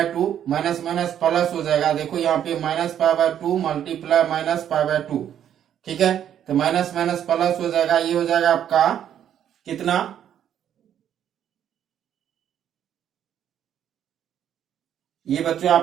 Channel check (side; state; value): left; quieter; 9.9 dB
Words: माइनस माइनस प्लस हो जाएगा। देखो यहाँ पे -π/2 मल्टीप्लाई -π/2, ठीक है? तो माइनस माइनस प्लस हो जाएगा, ये हो जाएगा आपका कितना? ये बच्चों